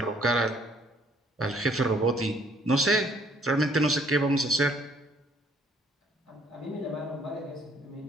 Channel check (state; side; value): normal; both; correlation 0.63